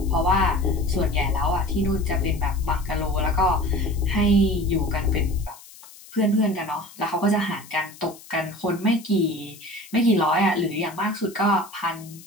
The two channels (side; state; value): left; noise; hiss, 20 dB below the sound